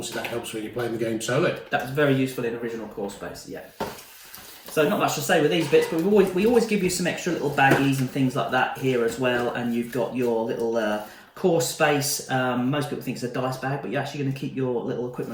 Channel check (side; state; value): both; identical; correlation 1.00